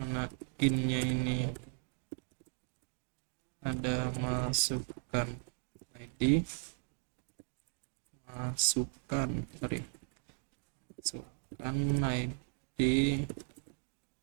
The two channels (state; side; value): silent; left; 53 dB below the other